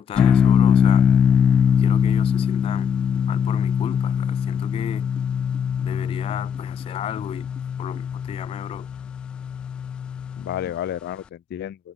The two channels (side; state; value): right; quieter; 7.6 dB